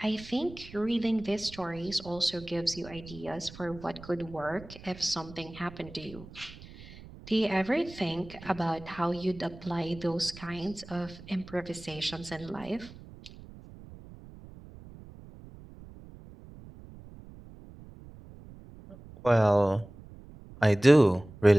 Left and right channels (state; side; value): noise; right; rumble, 18 dB below the sound